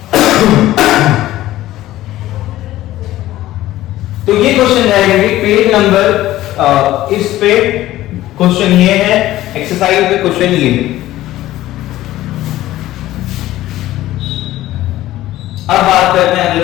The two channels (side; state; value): right; quieter; 15.2 dB